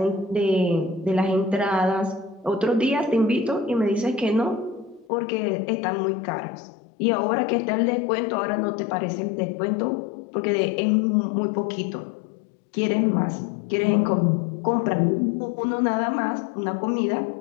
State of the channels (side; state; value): right; drops out; at 5.1 s